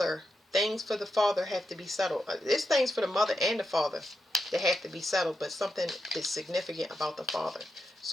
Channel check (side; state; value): both; normal; correlation 0.86